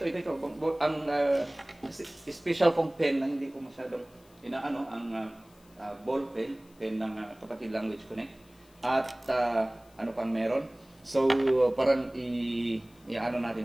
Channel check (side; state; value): left; noise; hiss, 29 dB below the sound